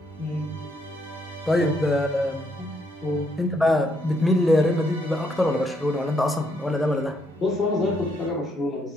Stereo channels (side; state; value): both; normal; correlation 0.73